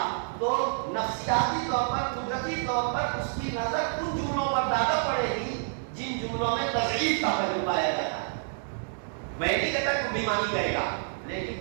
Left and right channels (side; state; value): left; silent; digital silence